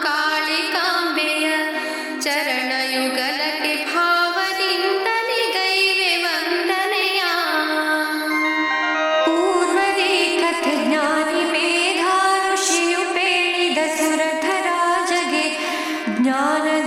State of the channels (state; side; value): identical; both; correlation 1.00